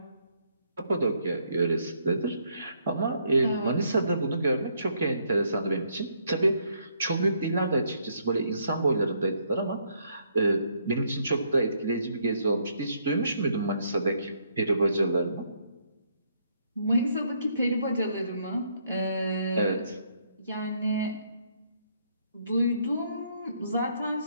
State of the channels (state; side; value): inverted; both; correlation -0.71